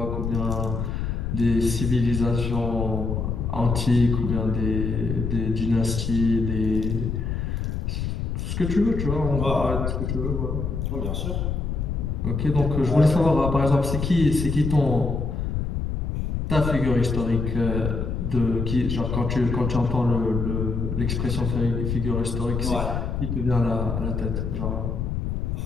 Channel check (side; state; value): left; noise; rumble, 2 dB below the sound